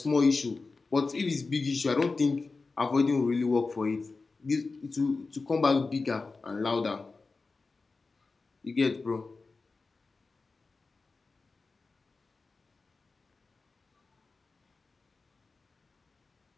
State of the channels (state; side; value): quieter; right; 4.0 dB